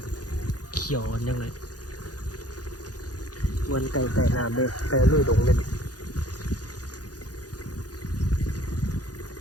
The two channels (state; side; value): late; right; 0.68 ms